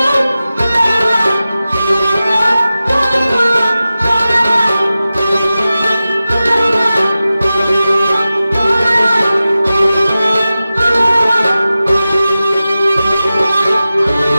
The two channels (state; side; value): inverted; both; correlation -0.94